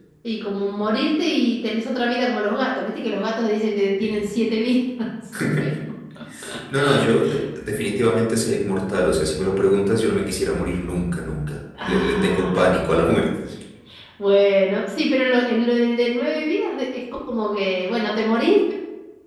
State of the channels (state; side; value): identical; both; correlation 1.00